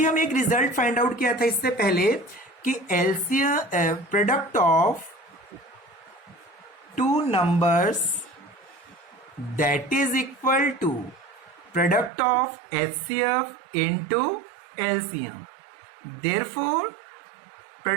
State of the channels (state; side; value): drops out; left; at 12.1 s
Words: हम एक result find out किया था इससे पहले कि LCM product of two numbers that is equal to product of HCF into LCM. Therefore,